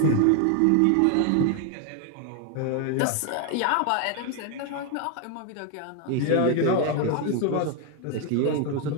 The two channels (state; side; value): different; both; correlation 0.01